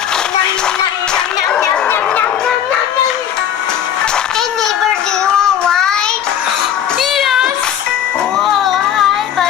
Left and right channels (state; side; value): quieter; right; 9.6 dB